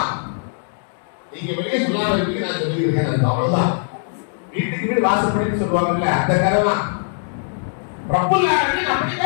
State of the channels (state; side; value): silent; right; digital silence